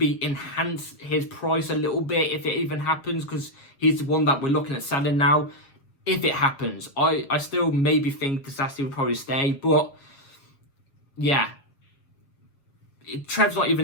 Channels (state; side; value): late; right; 7.3 ms